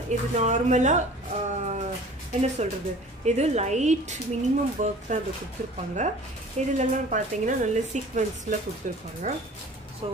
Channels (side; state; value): both; normal; correlation 0.45